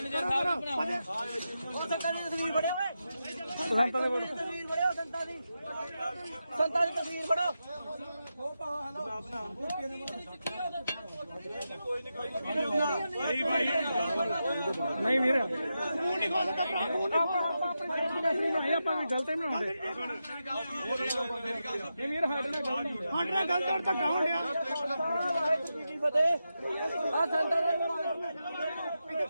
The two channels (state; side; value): inverted; both; correlation -0.89